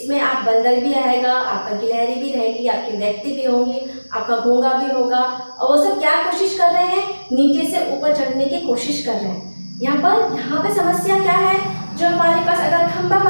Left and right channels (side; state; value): both; inverted; correlation -1.00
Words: आप बंदर भी आएगा, आपका गिलहरी भी रहेगी, आपके व्यक्ति भी होंगे, आपका घोंगा भी होगा और वो सब क्या कोशिश कर रहे हैं, नीचे से ऊपर चढ़ने की कोशिश कर रहे हैं। यहाँ पे समस्या क्या है, जो हमारे पास अगर खंबा